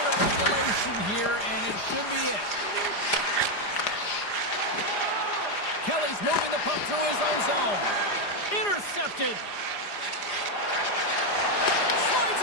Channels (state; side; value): late; right; 4.9 ms